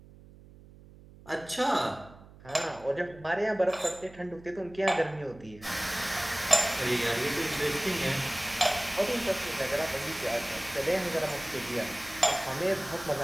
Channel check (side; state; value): right; noise; hum, 21 dB below the sound